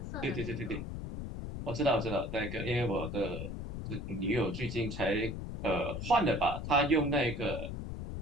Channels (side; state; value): left; noise; rumble, 6 dB below the sound